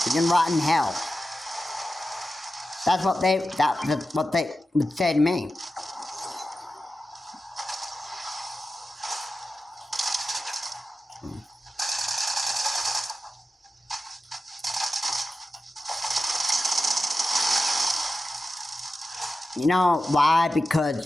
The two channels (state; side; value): normal; both; correlation 0.93